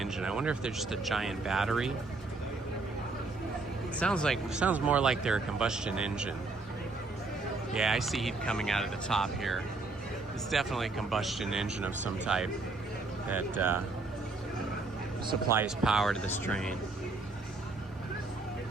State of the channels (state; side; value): quieter; left; 3.5 dB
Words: I wonder if they're just a giant battery. It sounds more like they're a combustion engine. Yeah, I see heat coming out of the top here. It's definitely a combustion engine of some type that supplies power to this train.